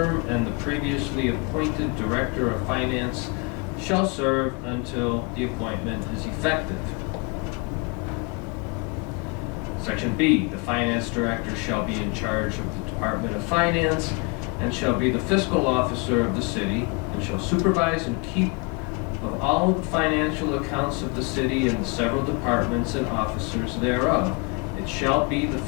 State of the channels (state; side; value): quieter; right; 30.6 dB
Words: and the previously appointed director of finance shall serve until the appointment is effective. Section B, the finance director shall be in charge of the Department of Finance and shall be the fiscal officer of the city and shall supervise and keep of all the financial accounts of the city and the several departments and officers thereof. It shall be the